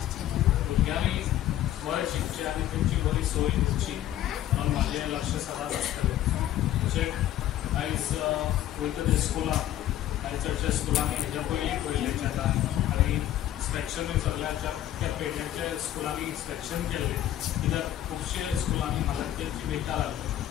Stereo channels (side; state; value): right; quieter; 12.6 dB